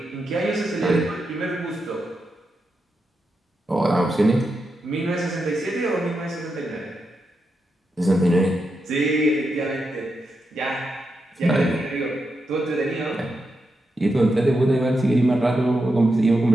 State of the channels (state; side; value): normal; both; correlation 0.86